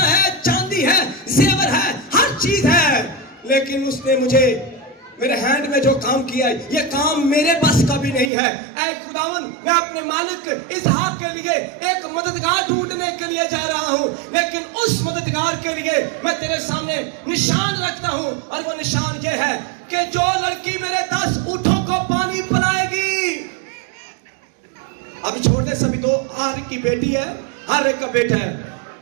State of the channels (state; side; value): drops out; left; at 8.3 s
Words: है, चांदी है, जेवर है, हर चीज है, लेकिन उसने मुझे मेरे हैंड में जो काम किया है, ये काम मेरे बस का भी नहीं है। ऐ खुदावन, मैं अपने मालिक इसहाक के लिए एक मददगार ढूंढने के लिए जा रहा हूं, लेकिन उस मददगार के लिए मैं तेरे सामने निशान रखता हूं, और वो निशान ये है कि जो लड़की मेरे 10 ऊंटों को पानी पिलाएगी। अभी छोड़ दे सभी, दो हर की बेटी है, हर एक का बेटा है।